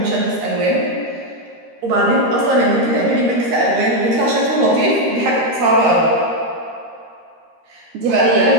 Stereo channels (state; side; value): late; left; 13 ms